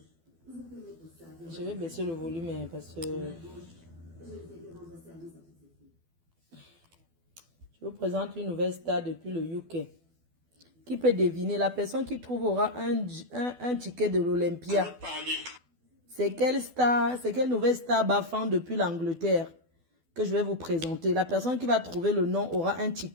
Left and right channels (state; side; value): late; left; 12 ms